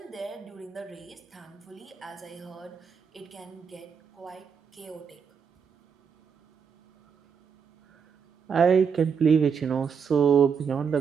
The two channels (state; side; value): quieter; left; 6.5 dB